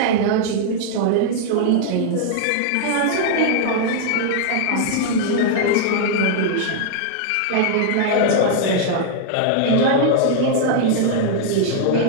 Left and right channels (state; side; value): different; both; correlation -0.01